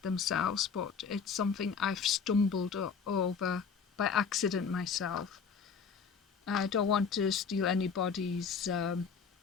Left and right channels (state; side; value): quieter; right; 6.0 dB